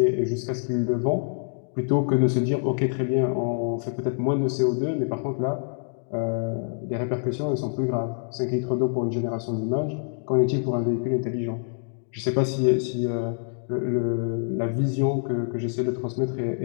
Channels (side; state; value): right; silent; digital silence